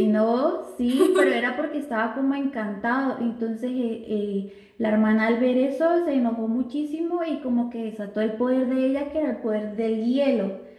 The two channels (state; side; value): identical; both; correlation 1.00